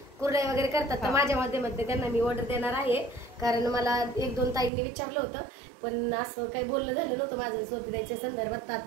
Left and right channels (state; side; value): drops out; left; at 4.7 s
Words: कुरडई वगैरे करतात. तर माझ्या मध्ये त्यांना मी ऑर्डर देणार आहे कारण मला 1-2 ताईंनी विचारलं होतं पण असं काही बोलणं झालं नव्हतं माझं स्वातीताईच्या संदर्भात.